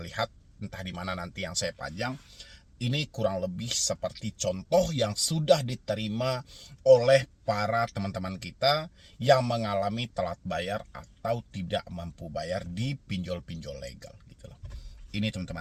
entah di mana nanti yang saya panjang. Ini kurang lebih seperti contoh yang sudah diterima oleh para teman-teman kita yang mengalami telat bayar atau tidak mampu bayar di pinjol-pinjol legal gitu loh. Ini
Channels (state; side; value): identical; both; correlation 1.00